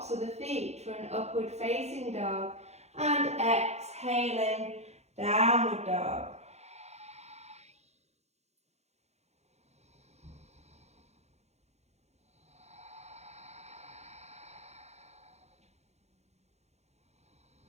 of the feet for an upward facing dog, and exhaling, downward dog.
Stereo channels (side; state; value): left; late; 0.32 ms